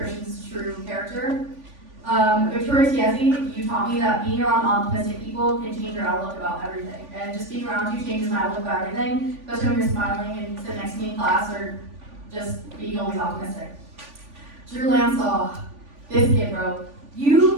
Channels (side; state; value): left; late; 3.5 ms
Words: true character. Victoria Tiesi, you taught me that being around optimistic people can change your outlook about everything. And just being around you changes my outlook about everything, especially when you're smiling and sitting next to me in class or just being always optimistic. Drew Lansaw, this kid, bro.